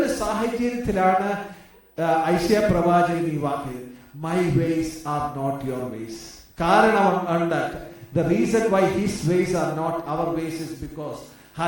സാഹചര്യത്തിലാണ് ഐശയ്യാ പ്രവാചകൻ ഈ വാക്ക്, my ways are not your ways. കാരണം ഉണ്ട്. The reason why his ways are not our ways is because,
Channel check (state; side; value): identical; both; correlation 1.00